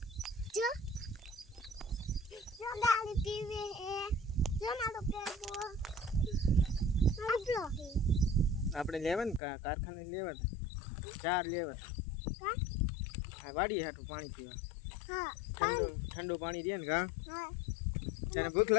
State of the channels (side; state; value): right; drops out; at 9.4 s